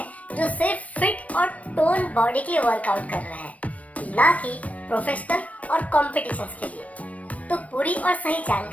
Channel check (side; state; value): right; late; 0.067 ms